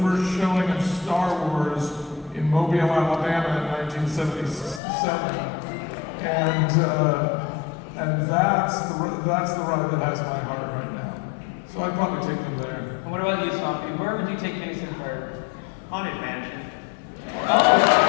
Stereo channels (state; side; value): drops out; right; at 4.8 s